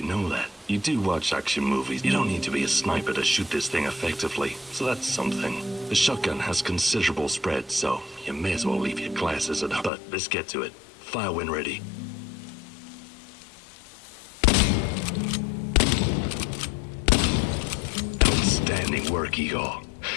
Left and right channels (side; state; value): right; drops out; at 9.9 s